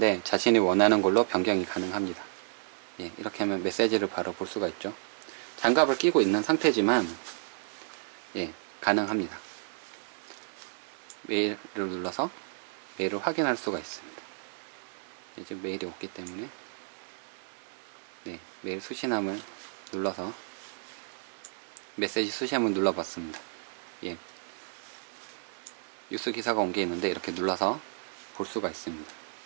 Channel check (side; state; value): left; silent; 57 dB below the other